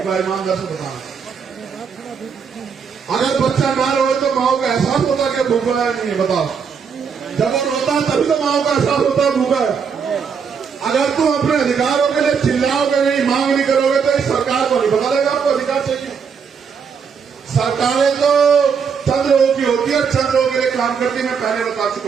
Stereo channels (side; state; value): left; quieter; 6.3 dB